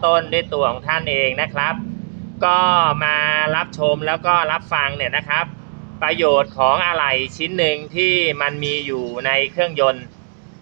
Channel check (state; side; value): silent; left; digital silence